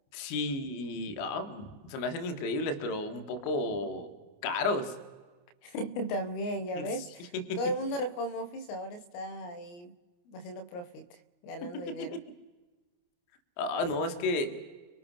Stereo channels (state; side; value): late; right; 29 ms